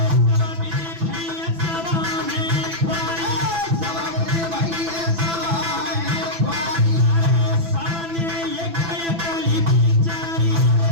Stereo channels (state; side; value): late; left; 6.0 ms